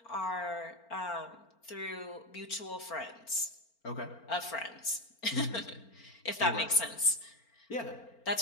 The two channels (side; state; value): right; late; 4.4 ms